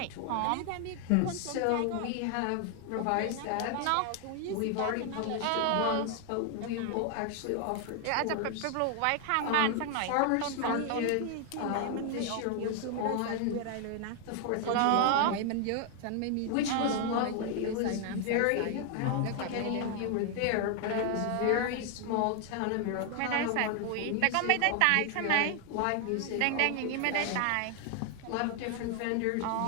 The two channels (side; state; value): both; different; correlation 0.00